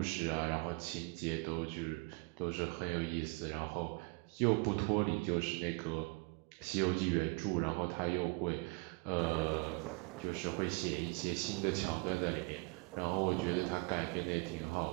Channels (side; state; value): left; quieter; 28.4 dB